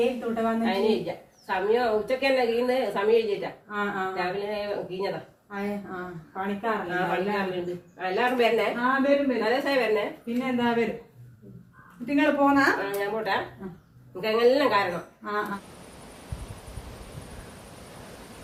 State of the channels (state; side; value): identical; both; correlation 1.00